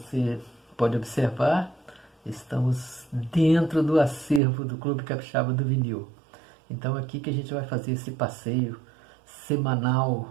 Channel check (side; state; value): left; drops out; at 4.4 s